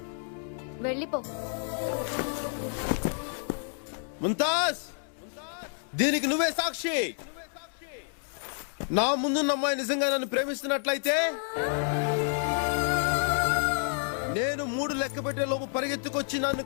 వెళ్ళిపో. ముంతాజ్, దీనికి నువ్వే సాక్షి. నా ముందున్న అమ్మాయి నిజంగా నన్ను ప్రేమిస్తున్నట్లయితే నేను 3 లెక్క పెట్టే లోపు పరిగెత్తుకొచ్చి నన్ను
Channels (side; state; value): right; silent; 58 dB below the other